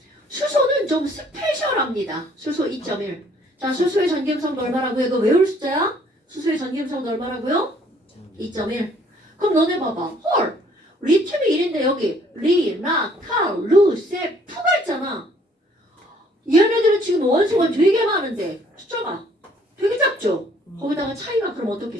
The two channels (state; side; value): normal; both; correlation 0.61